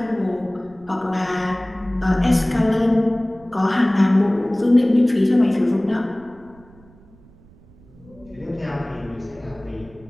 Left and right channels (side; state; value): right; noise; rumble, 26 dB below the sound